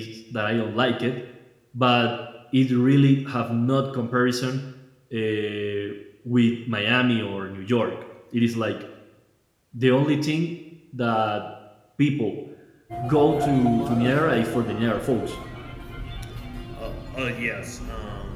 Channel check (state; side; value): identical; both; correlation 1.00